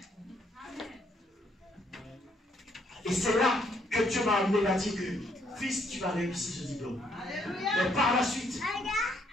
Et c'est là que Dieu m'a amené à dire que, fils, tu vas réussir ce diplôme. Alléluia. Mais par la suite,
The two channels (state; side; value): normal; both; correlation 0.70